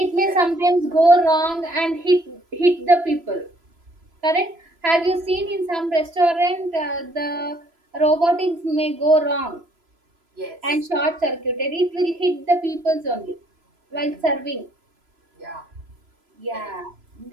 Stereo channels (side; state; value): left; late; 3.0 ms